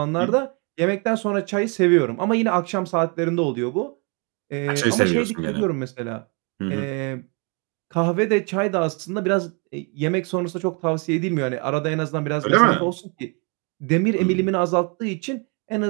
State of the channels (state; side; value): quieter; left; 34.3 dB